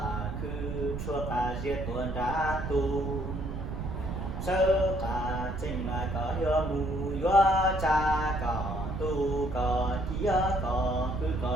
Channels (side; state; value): right; noise; rumble, 6 dB below the sound